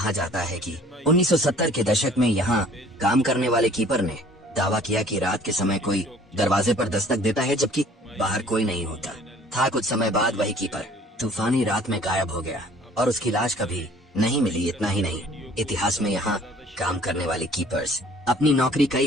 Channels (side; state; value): both; normal; correlation 0.53